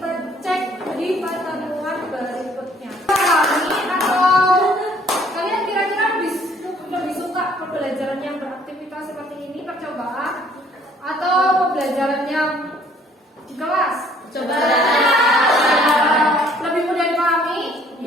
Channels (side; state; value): both; normal; correlation 0.60